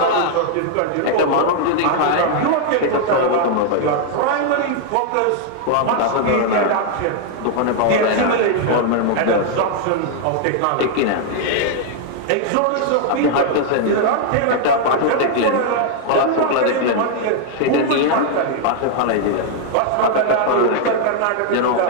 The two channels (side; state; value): both; different; correlation 0.00